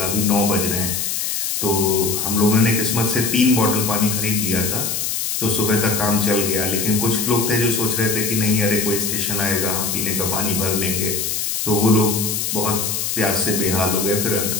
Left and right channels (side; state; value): left; noise; hiss, 1 dB below the sound